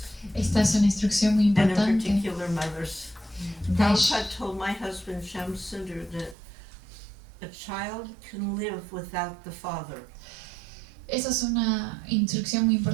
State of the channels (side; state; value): left; drops out; at 6.4 s